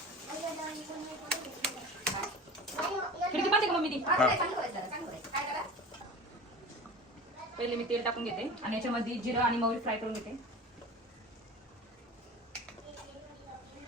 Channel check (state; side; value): normal; both; correlation 0.35